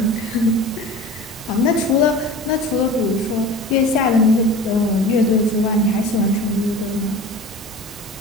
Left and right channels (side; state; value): both; normal; correlation 0.37